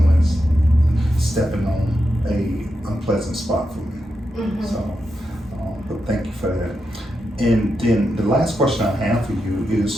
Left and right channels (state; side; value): normal; both; correlation 0.87